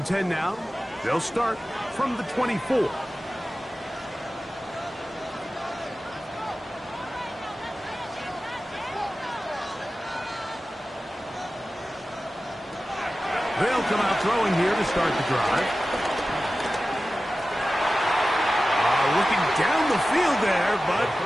10 now. They'll start from the 24. They'll come out throwing here to start the drive. Looking down the field there, but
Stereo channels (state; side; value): normal; both; correlation 0.95